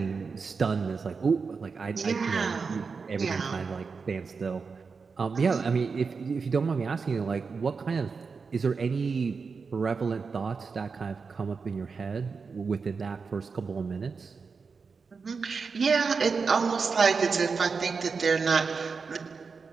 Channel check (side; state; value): left; quieter; 5.0 dB